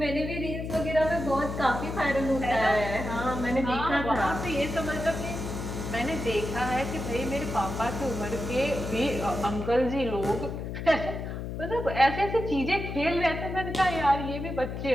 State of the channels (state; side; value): noise; left; hum, 6 dB below the sound